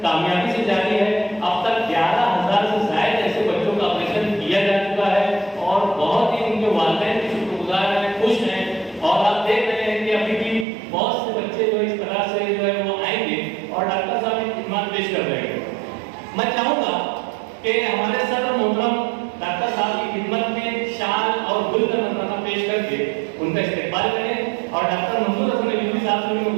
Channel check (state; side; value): drops out; left; at 10.7 s